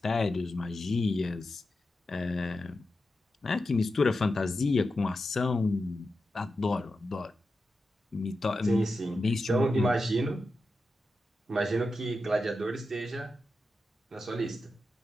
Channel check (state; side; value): normal; both; correlation 0.90